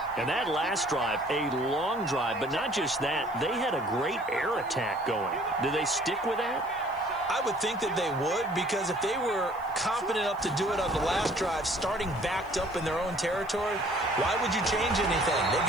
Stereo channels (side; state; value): left; noise; hiss, 27 dB below the sound